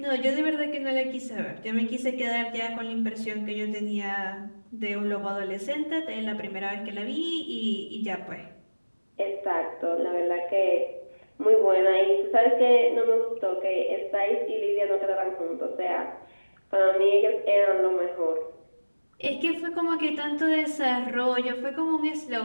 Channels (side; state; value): both; inverted; correlation -1.00